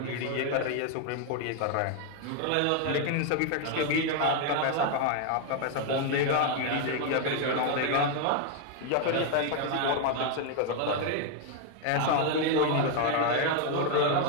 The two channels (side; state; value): both; different; correlation 0.01